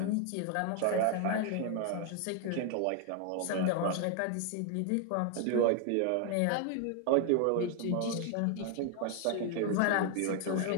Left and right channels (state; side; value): different; both; correlation 0.01